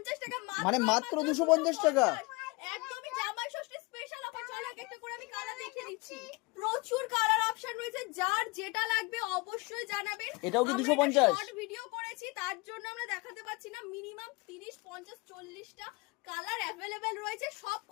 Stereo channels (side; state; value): right; quieter; 26.0 dB